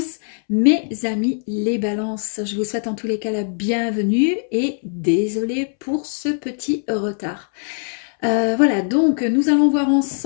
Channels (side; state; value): right; silent; 65 dB below the other